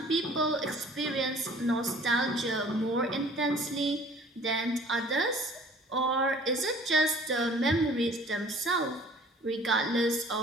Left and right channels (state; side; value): normal; both; correlation 0.51